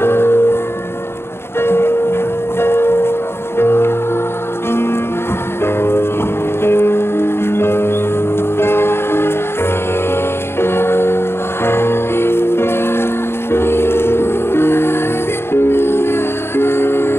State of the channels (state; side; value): late; right; 0.12 ms